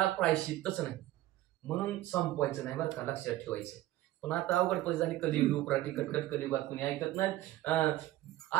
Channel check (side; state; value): left; quieter; 15.5 dB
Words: प्रायश्चित्तच नाही, म्हणून संपवायचं नाही बरं का, लक्षात ठेवायचं. पण आता अवघड पैसे झाली, कलियुग उपराटी कटकट कलियुगात कुणी ऐकत नाही.